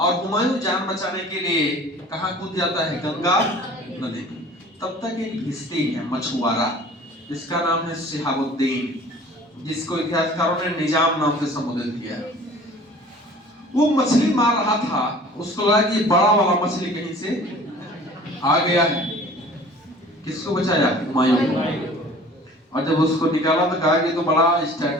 हुमायूं जान बचाने के लिए कहां कूद जाता है? गंगा नदी। तब तक एक भिश्ती है मछुआरा, जिसका नाम है शिहाबुद्दीन, जिसको इतिहासकारों ने निजाम नाम से संबोधित किया। वो मछली मार रहा था, उसको लगा कि बड़ा वाला मछली कहीं से आ गया है। किसको बचाया? हुमायूं को। और जब उसको निकाला तो कहा कि तो बड़ा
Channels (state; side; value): normal; both; correlation 0.47